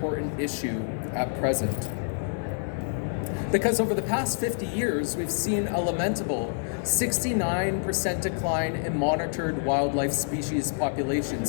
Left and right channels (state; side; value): silent; right; digital silence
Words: issue at present. Because over the past 50 years, we've seen a lamentable 69% decline in monitored wildlife species